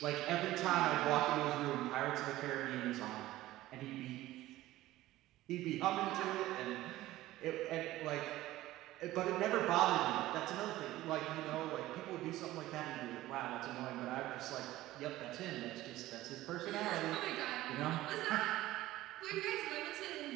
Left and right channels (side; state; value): left; quieter; 16.2 dB